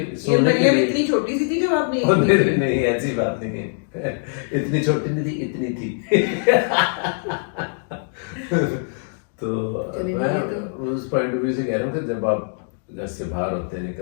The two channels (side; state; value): right; silent; 63 dB below the other